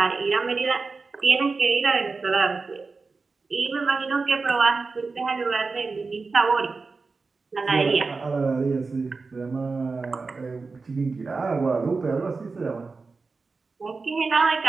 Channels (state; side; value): quieter; left; 4.2 dB